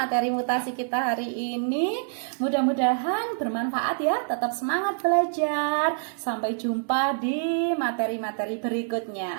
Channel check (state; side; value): silent; left; digital silence